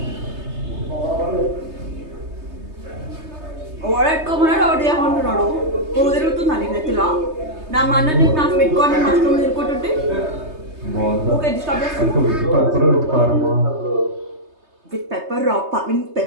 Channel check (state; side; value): late; left; 3.3 ms